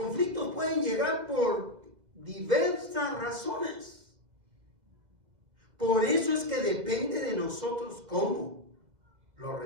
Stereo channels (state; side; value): late; left; 2.0 ms